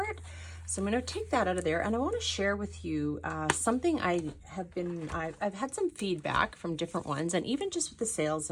it. So I'm going to take that out of there, and I want to share with you something I've had some feedback from different ones, and even just with the sales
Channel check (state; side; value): identical; both; correlation 1.00